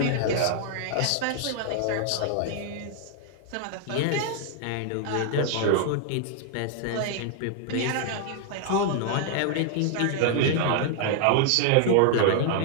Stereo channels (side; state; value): both; different; correlation 0.00